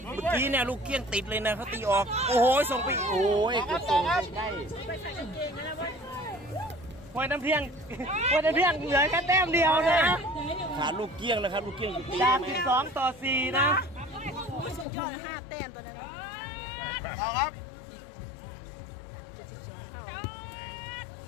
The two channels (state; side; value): drops out; right; at 14.9 s